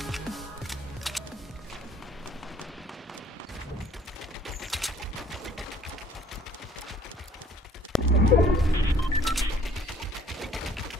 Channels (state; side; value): normal; both; correlation 0.58